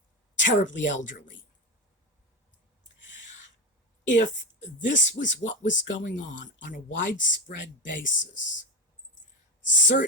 terribly elderly. If this was what was going on a widespread basis.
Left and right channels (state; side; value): normal; both; correlation 0.16